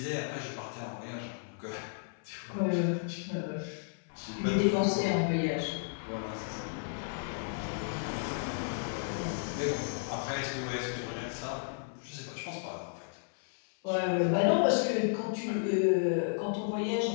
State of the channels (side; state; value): right; silent; 56 dB below the other